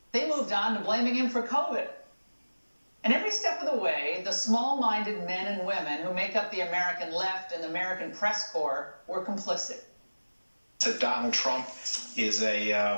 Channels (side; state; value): both; inverted; correlation -1.00